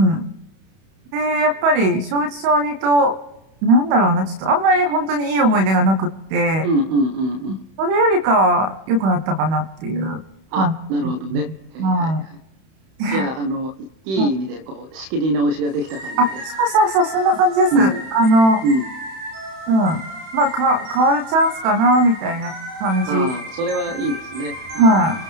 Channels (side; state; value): left; late; 31 ms